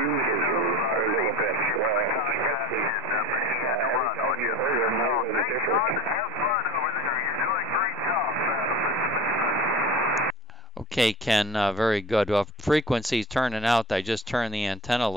you a little bit. Every time you heard them, it was different. Okay, Ken, very good. Well, frequency's turning out. I just turned the antenna a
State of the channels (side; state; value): both; normal; correlation 0.37